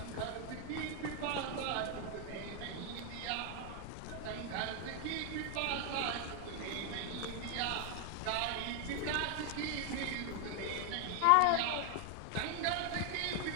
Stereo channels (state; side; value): different; both; correlation 0.00